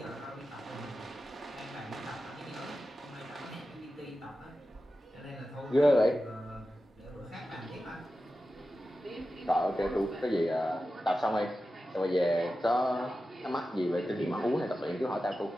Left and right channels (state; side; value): normal; both; correlation 0.92